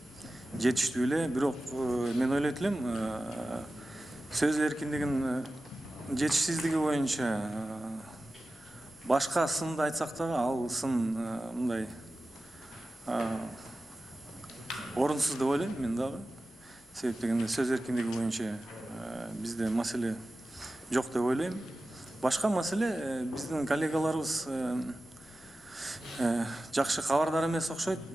жетиштүү эле, бирок мен ойлойт элем, сөз эркиндигинин жетишсиздиги боюнча башка сынды айтсак дагы, ал сын мындай орунсуз деп ойлойм мен дагы. Себеп дегенде сөз эркиндиги боюнча бизде маселе жок деп ойлойм. Башка маселе биздин коллегаларыбыз жакшы кабардар эмес окшойт.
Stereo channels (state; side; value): normal; both; correlation 0.95